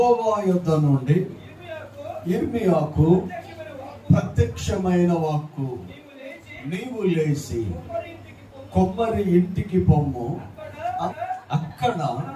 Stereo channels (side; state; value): both; identical; correlation 1.00